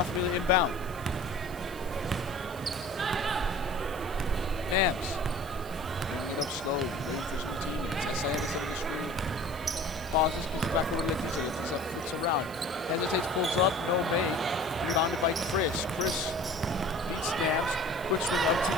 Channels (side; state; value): right; noise; hiss, 19 dB below the sound